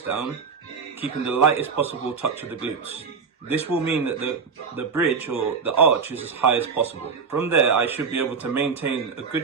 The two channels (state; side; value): quieter; left; 5.6 dB